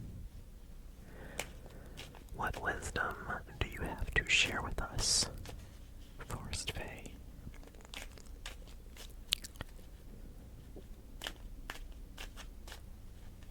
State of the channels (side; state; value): both; identical; correlation 1.00